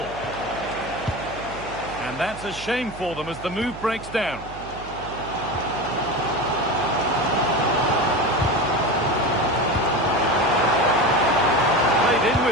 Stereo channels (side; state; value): right; noise; hum, 14 dB below the sound